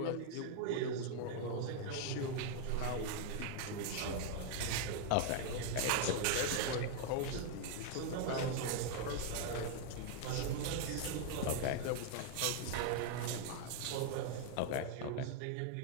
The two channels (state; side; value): different; both; correlation 0.00